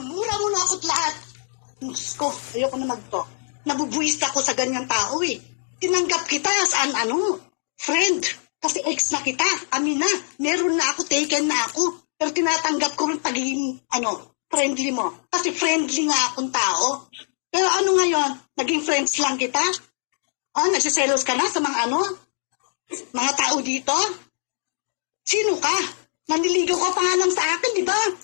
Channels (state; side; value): silent; right; 59 dB below the other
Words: mo na ako't lahat. Diyos ko, ayoko na magto. Nabubuwis ako sa ganyang tao eh. Tinanggap kita as friend. Kasi ex na kita, amin na. Meron na ako, taken na ako. Pero tinatanggap ko rin pagiging, friendly mo. Kasi friendly nga akong tao. Pero ngayon, naging friends lang kita? Nagsiselos ka na sa mga tao dito? Sino ka? Naniligaw ka pa nga lang sa akin, di ba?